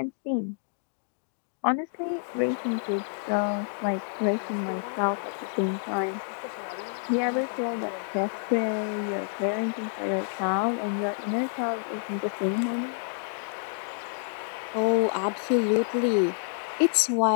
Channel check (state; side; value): silent; right; digital silence